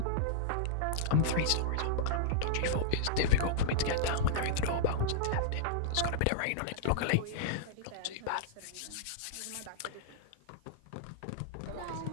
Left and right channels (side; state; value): both; different; correlation -0.02